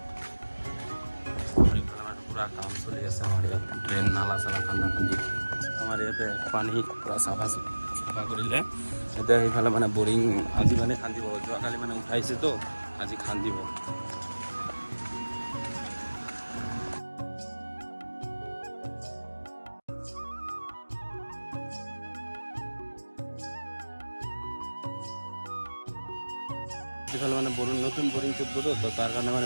পুৰা কাম চলি আছে আমাৰ ইয়াত, ড্ৰেইন নালা চালা খান্দা খান্দি। আমাৰ ইয়াতে পানী পূৰা চাফা কৰিলে। এতিয়া সেইফালে মানে বৰিং আজি মানে খান্দিব, যোৱাকালি মানে উঠাইছেতো, আজি খান্দিব। এইফালে মানে নতুন বৰিং ফুটবো, তো তাৰ কাৰণে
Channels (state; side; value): inverted; both; correlation -1.00